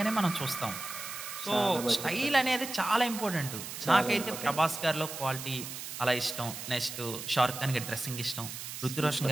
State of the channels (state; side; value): noise; right; hiss, 8 dB below the sound